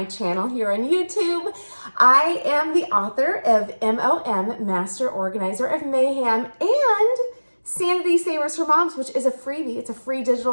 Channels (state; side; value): inverted; both; correlation -1.00